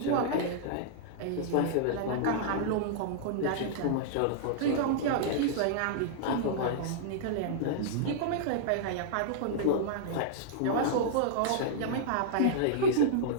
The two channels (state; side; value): different; both; correlation -0.02